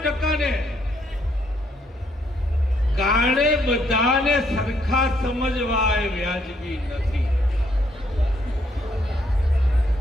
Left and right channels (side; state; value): both; normal; correlation 0.71